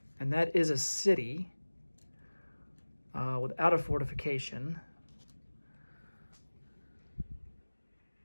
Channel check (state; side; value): inverted; both; correlation -1.00